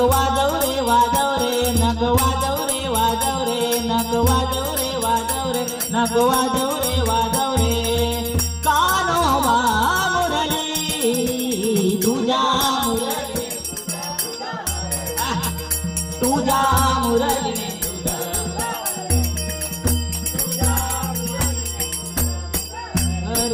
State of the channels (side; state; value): both; identical; correlation 1.00